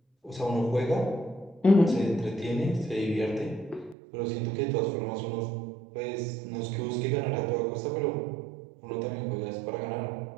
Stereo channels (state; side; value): drops out; left; at 4.0 s